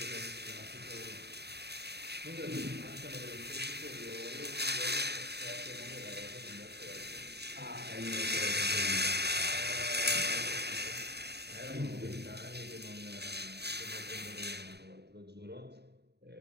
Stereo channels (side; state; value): left; late; 0.48 ms